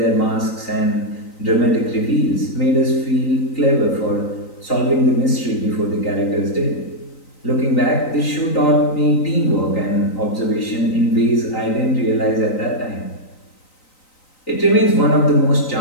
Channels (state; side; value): late; right; 3.9 ms